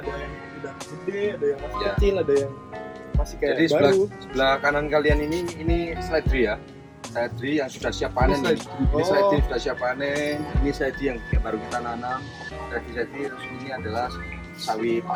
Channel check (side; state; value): both; identical; correlation 1.00